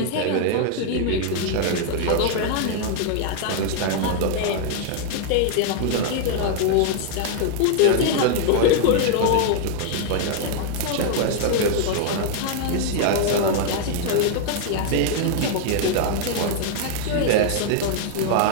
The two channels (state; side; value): different; both; correlation 0.00